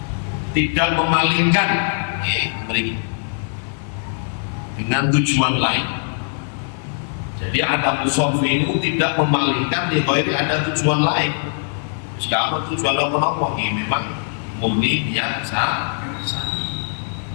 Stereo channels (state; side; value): silent; right; digital silence